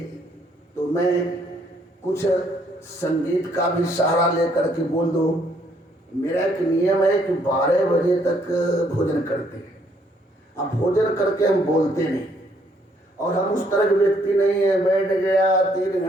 तो मैं कुछ संगीत का भी सहारा लेकर के बोल दो। मेरा एक नियम है कि 12 बजे तक भोजन करते हैं। अब भोजन करके हम बोलते नहीं, और हम उस तरह के व्यक्ति नहीं है बैठ गया 3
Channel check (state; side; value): normal; both; correlation 0.68